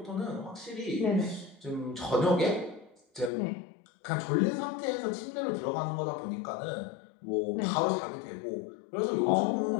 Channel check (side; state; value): right; drops out; at 3.3 s